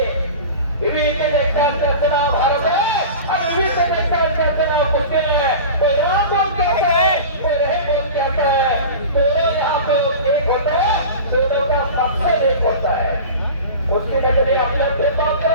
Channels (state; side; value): inverted; both; correlation -0.34